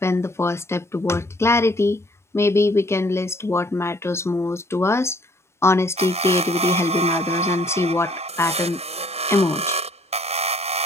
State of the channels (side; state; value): both; normal; correlation 0.61